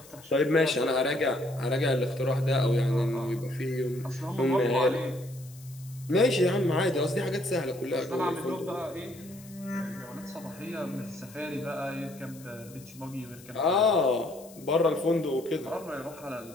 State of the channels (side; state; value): left; noise; hiss, 21 dB below the sound